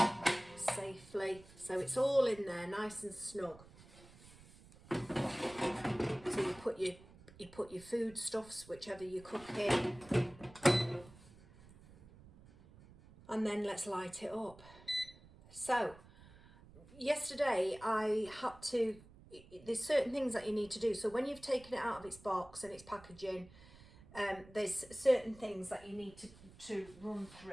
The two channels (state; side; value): noise; right; rumble, 21 dB below the sound